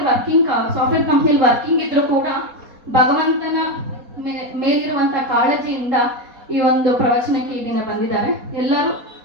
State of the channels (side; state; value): left; late; 4.1 ms